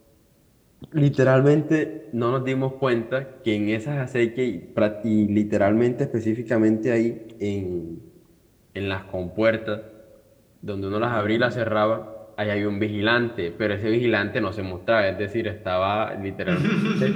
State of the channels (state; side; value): identical; both; correlation 1.00